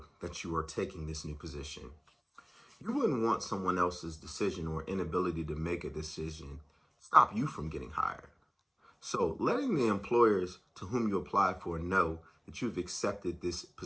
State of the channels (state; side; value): identical; both; correlation 1.00